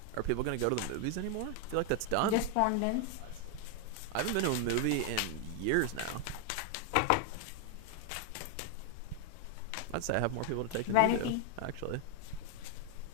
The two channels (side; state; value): both; different; correlation 0.00